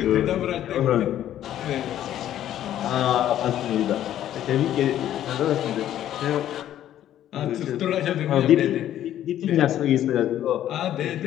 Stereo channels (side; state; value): right; quieter; 11.8 dB